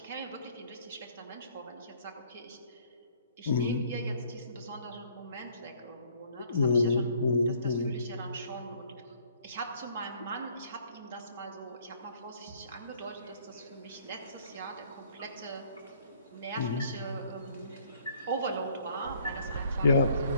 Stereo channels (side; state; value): both; inverted; correlation -0.61